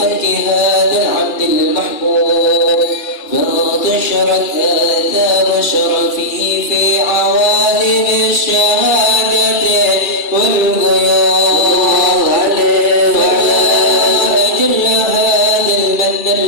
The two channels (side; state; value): right; late; 2.3 ms